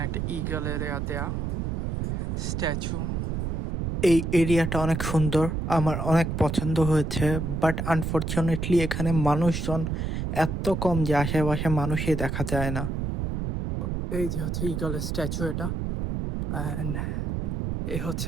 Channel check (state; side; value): noise; right; rumble, 2 dB below the sound